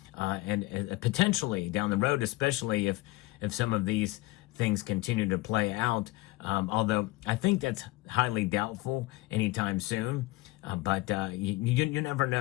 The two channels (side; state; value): right; quieter; 20.4 dB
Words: And potentially down the road, especially if some of these things continue to play out, although I think that's highly doubtful anytime soon. But you never